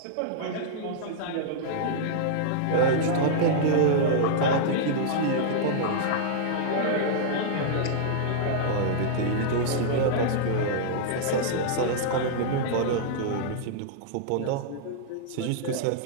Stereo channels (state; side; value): different; both; correlation -0.02